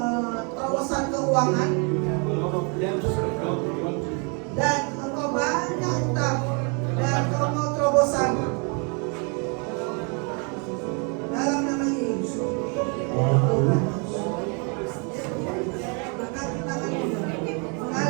terobosan keuangan You have a lot of debts that God will want to. dan engkau banyak utang dan kau mau terobosan. Dalam nama Yesus. Angkat tanganmu,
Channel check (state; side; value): quieter; left; 35.4 dB